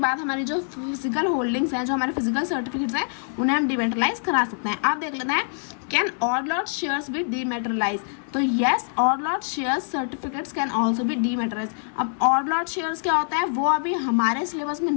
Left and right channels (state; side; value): silent; right; 62 dB below the other